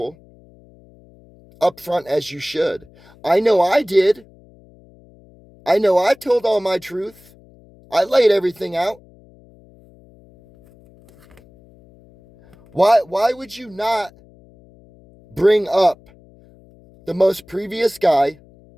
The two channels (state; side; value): noise; left; hum, 27 dB below the sound